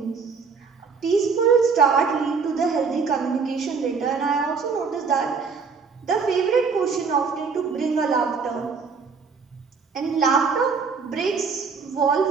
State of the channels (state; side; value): quieter; left; 5.3 dB